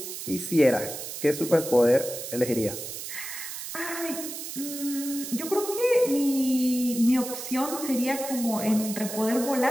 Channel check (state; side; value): noise; right; hiss, 8 dB below the sound